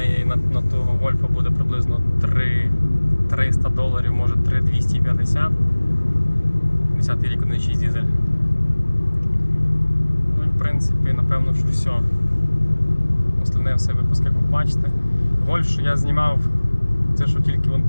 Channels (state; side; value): inverted; both; correlation -1.00